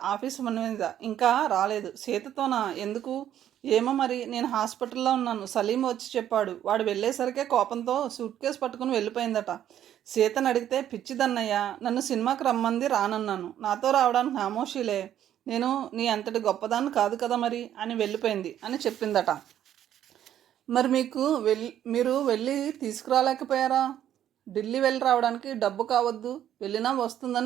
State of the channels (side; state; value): left; quieter; 10.9 dB